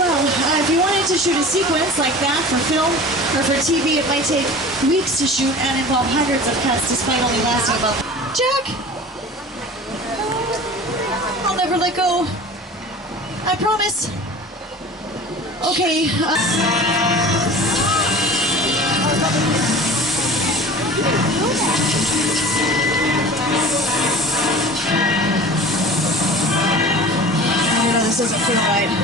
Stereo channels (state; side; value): normal; both; correlation 0.39